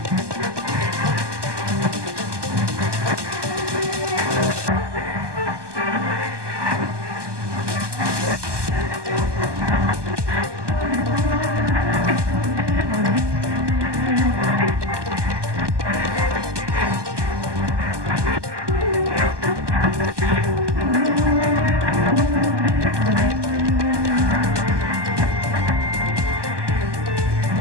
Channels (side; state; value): left; late; 1.2 ms